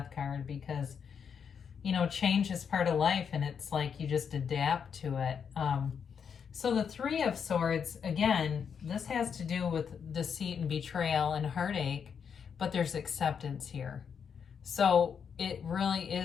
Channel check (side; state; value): right; quieter; 7.0 dB